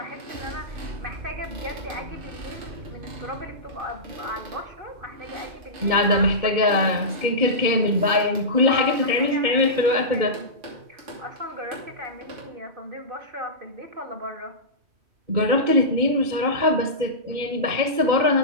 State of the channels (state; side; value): late; left; 2.1 ms